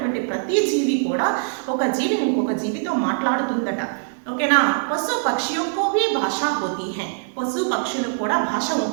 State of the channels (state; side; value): silent; left; digital silence